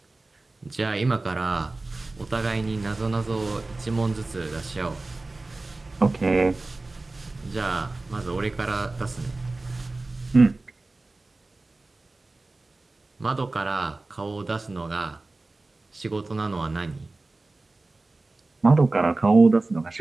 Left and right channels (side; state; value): left; quieter; 3.2 dB